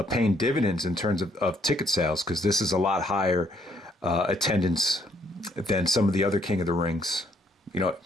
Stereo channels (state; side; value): normal; both; correlation 0.68